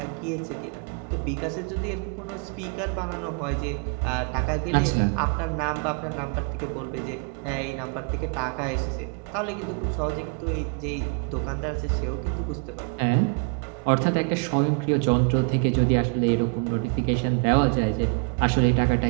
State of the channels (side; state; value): left; quieter; 37.3 dB